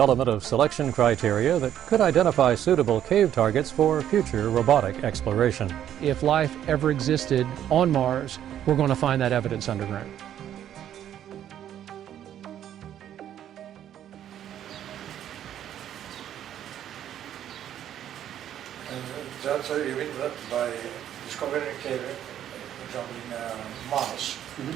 of selection criteria that could identify suitable cave targets for future robotic exploration. If life ever existed on Mars, we're going to find that evidence underground. That's how you mean that by discovering a cave, for example, in Mars,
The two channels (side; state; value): left; quieter; 10.7 dB